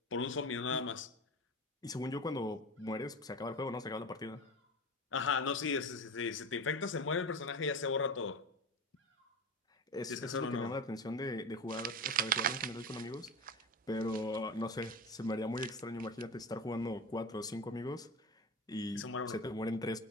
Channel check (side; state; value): both; normal; correlation 0.27